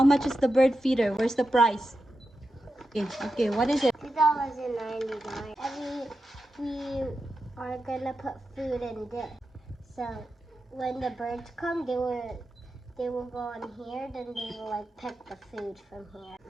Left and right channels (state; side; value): normal; both; correlation 0.89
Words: much is the bird feeder? Where's the price? Okay, what is it? $2.99. And we are gonna put food in this. So when the birds come, they will go in here, then they will like pick the food from here.